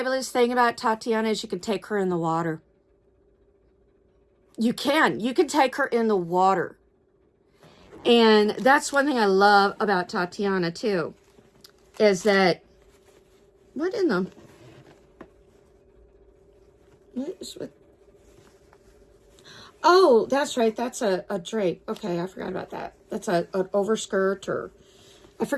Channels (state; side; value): identical; both; correlation 1.00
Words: thing about Tatiana is you can take her in the water. You can take her in the water. And that's one thing I love about Tatiana too, is that, what is with, oh, that's right. That's a drape. Okay, I forgot about that. That's an overskirt, or I